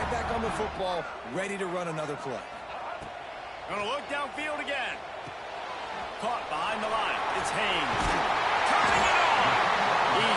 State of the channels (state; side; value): identical; both; correlation 1.00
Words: back on the football, ready to run another play. Gonna look downfield again. Caught behind the line. It's Haynes. Turning it on.